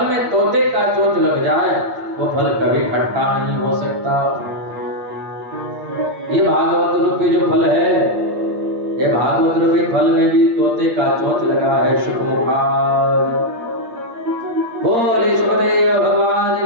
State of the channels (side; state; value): left; late; 8.6 ms